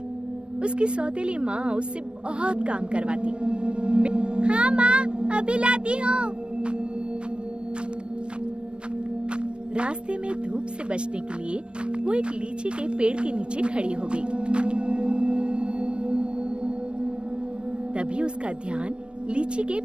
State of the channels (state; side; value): late; left; 0.057 ms